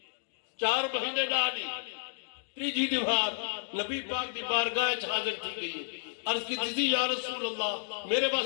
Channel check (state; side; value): silent; right; digital silence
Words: 4 مہینے ڈالی، تیجی دیوار نبی پاک دی بارگاہ حاضر تھی گئی ہے۔ عرض کی تھی یا رسول اللہ میرے